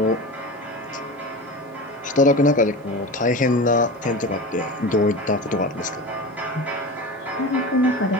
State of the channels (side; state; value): both; normal; correlation 0.29